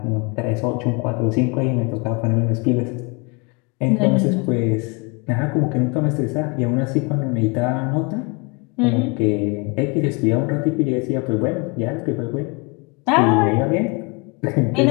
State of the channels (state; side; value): quieter; right; 30.6 dB